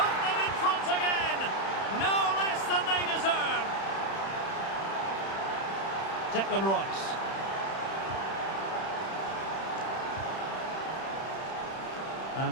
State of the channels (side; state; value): right; late; 31 ms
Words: them in front again. No less than they deserve. Declan Rice.